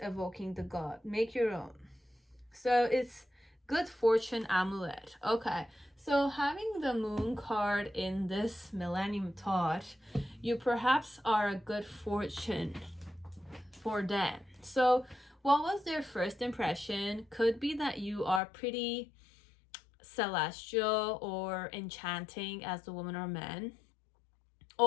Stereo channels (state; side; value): drops out; right; at 18.4 s